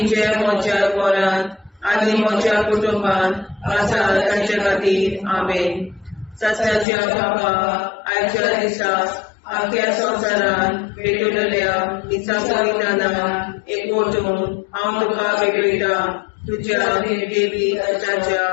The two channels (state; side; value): drops out; right; at 6.9 s